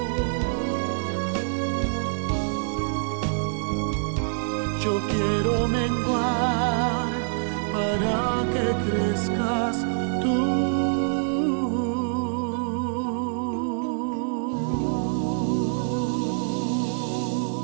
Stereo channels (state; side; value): silent; left; digital silence